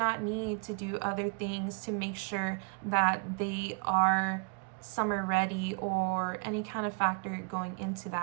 need to do other things to make sure that they are summer ready or any kind of factor going into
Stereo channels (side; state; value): left; quieter; 36.3 dB